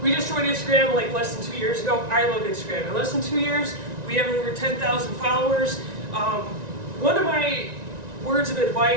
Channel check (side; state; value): left; late; 1.9 ms